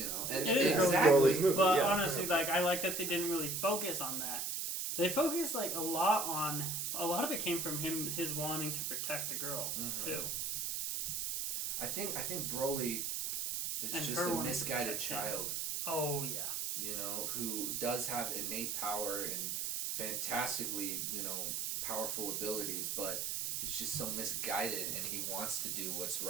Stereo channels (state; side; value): noise; right; hiss, 1 dB below the sound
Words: know, and it is exactly. Broly's movie. But yeah. honestly, like I like that they didn't really focus on that. They focused like a lot of it came from his wanting to protect the girl too. I think Broly is And just her a wanting to misguided protect him. child. Oh yeah. You know, who does have innate power and fantastically, powerful abilities, but he's just so misguided and he wants to do what's